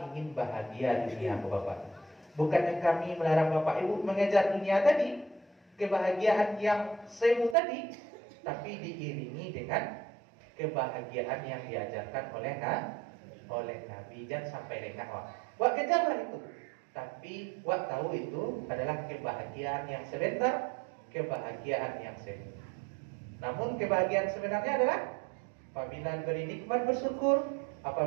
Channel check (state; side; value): drops out; left; at 7.6 s